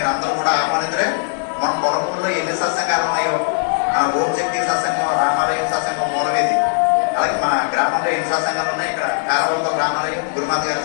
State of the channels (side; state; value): right; silent; digital silence